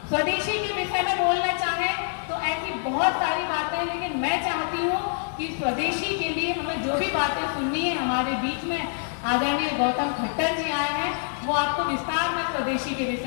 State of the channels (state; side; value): silent; right; digital silence